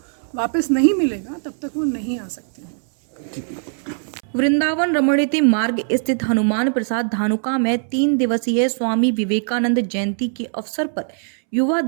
वापस नहीं मिलेगा, तब तक वो नहीं आ सकते हैं। वृंदावन रमणीति मार्ग स्थित हनुमान प्रसाद धानुका में 3 दिवसीय स्वामी विवेकानंद जयंती के अवसर पर युवा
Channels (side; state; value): left; silent; 65 dB below the other